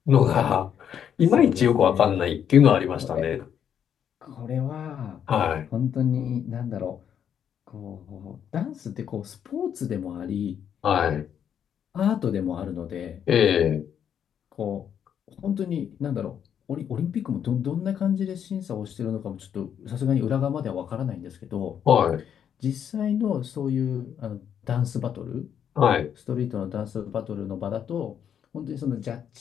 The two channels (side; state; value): right; quieter; 8.7 dB